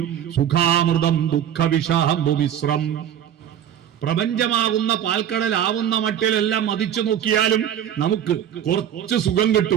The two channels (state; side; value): quieter; left; 10.0 dB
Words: സുഖാമൃതം ദുഃഖവിഷാംബുമിശ്രം. പ്രപഞ്ചമാകുന്ന പാൽക്കടലാവുന്ന മട്ടിലെല്ലാം മതിച്ചു നോക്കിയാലും നമുക്ക് കുറച്ച് സുഖം